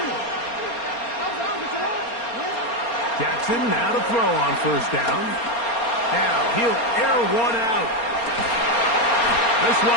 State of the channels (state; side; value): late; right; 4.3 ms